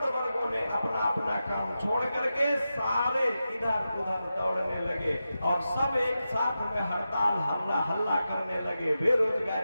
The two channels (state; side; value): inverted; both; correlation -0.91